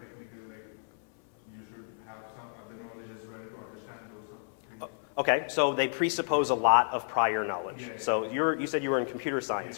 technical, like you should have some other knowledge as well to understand those things. Okay, so they presuppose a lot of prior knowledge. Yeah. So you said you were in computer science,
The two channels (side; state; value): right; silent; 57 dB below the other